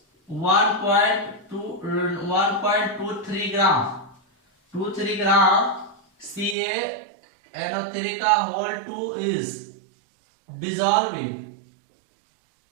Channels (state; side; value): drops out; left; at 6.6 s